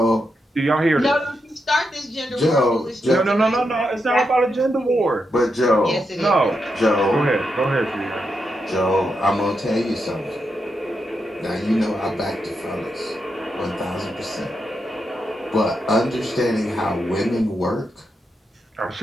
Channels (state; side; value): normal; both; correlation 0.84